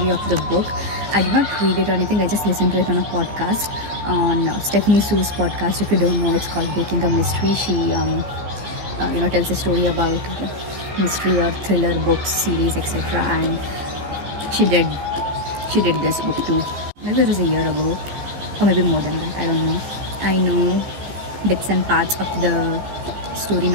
of the book. I did not read it or anything. I just listened to it on a podcast, on Stephanie Sue's podcast. If you don't know, it's called Baking a Mystery. She tells a story about mystery or thriller books, series, etc. And she did this book too. Maybe it was a year ago, or maybe more than that. I don't know. I know bits and parts of the story,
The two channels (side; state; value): left; late; 15 ms